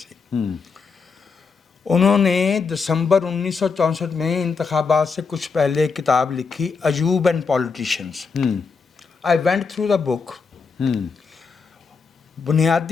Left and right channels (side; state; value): right; quieter; 5.1 dB